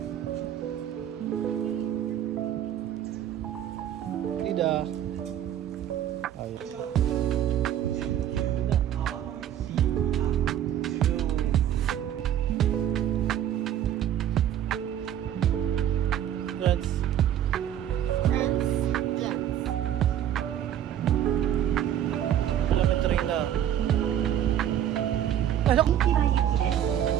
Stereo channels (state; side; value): quieter; left; 10.6 dB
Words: Lidah. Ay. Friends. Elementary na. Pasok.